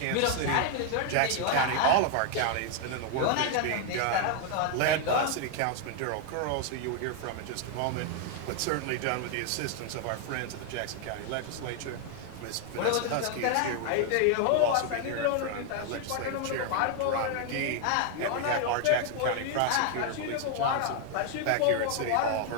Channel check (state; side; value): different; both; correlation 0.00